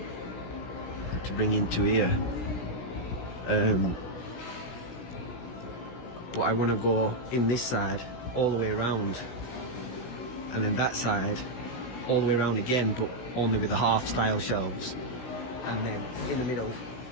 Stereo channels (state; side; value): late; right; 16 ms